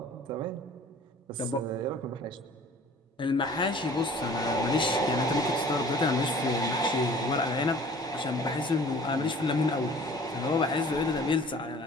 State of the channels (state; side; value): normal; both; correlation 0.48